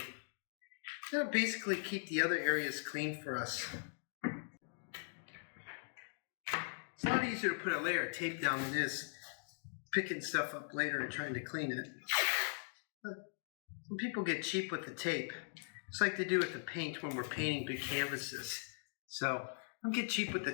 That'll basically keep the other areas clean for us. It's a lot easier to put a layer of tape down than it is picking stuff up later and trying to clean it. Some people get cheap with the tape. It's like they do with the paint when we're painting big canvases. So don't get cheap with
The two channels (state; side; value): silent; right; digital silence